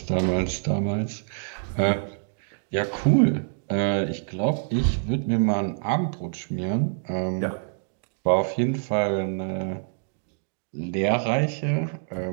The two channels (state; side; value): silent; left; digital silence